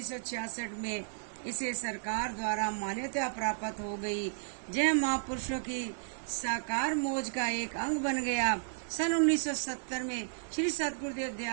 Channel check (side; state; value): left; silent; digital silence